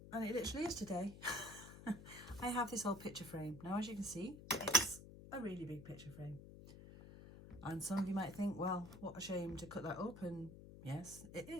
and it literally is today, I have this old picture frame. Now as you can see, it's a really big picture frame. And some of you might think, well, what a shame to cut that up, and yes, it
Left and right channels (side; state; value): left; noise; hum, 14 dB below the sound